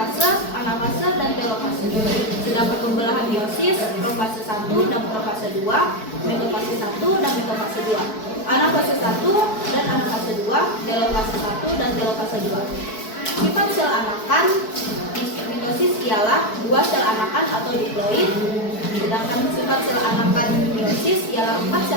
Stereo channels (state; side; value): late; right; 4.6 ms